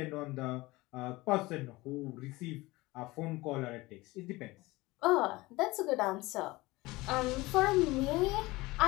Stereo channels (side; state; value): right; quieter; 20.9 dB